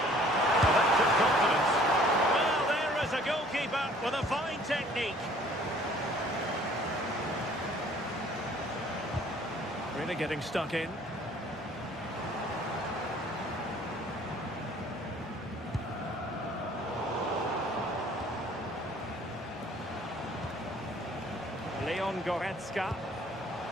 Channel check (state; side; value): normal; both; correlation 0.55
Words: Well, that took confidence. Well, there is a goalkeeper with a fine technique. Really getting stuck in. Leon Goretzka.